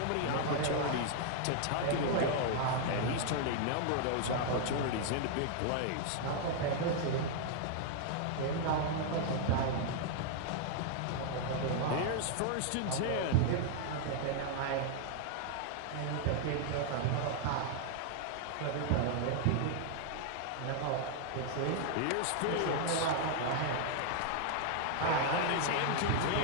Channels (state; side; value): different; both; correlation 0.00